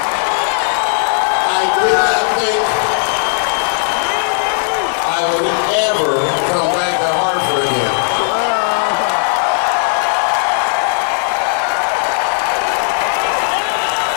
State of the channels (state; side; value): silent; right; digital silence